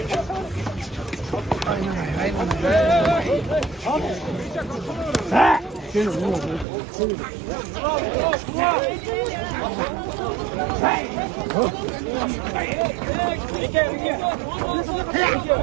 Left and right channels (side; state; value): left; drops out; at 6.7 s